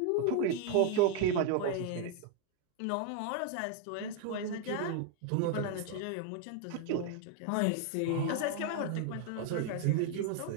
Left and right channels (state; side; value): different; both; correlation 0.00